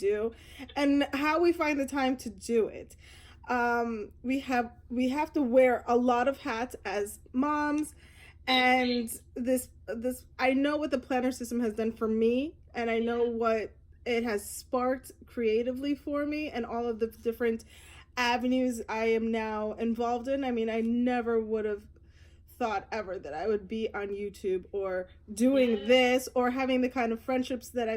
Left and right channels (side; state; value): both; identical; correlation 1.00